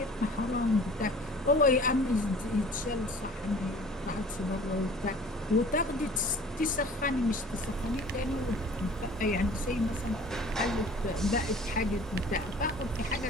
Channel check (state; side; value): normal; both; correlation 0.47